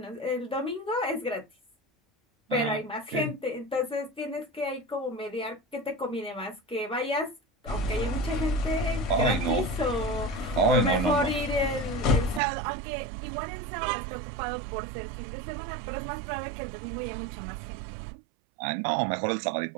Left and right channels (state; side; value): drops out; left; at 12.4 s